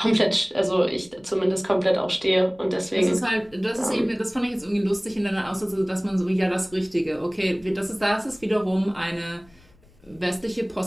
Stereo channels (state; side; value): noise; left; rumble, 29 dB below the sound